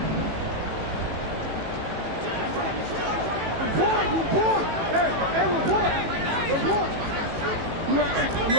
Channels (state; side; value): late; left; 18 ms